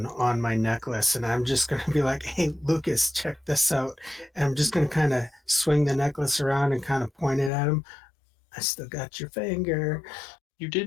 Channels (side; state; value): right; drops out; at 7.5 s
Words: on my necklace, and I'm just gonna be like, "Hey, Lucas, check this out." And I'm just gonna kind of swing the necklace around and kind of point it at him. I still got your finger. You